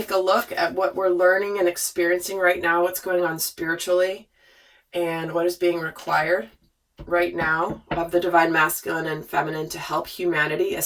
a look at what we're learning and experiencing right now, what's going on spiritually, and what is being required right now of the divine masculine and feminine to help humanity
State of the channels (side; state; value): both; identical; correlation 1.00